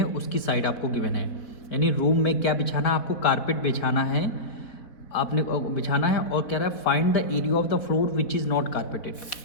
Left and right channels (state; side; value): late; right; 4.3 ms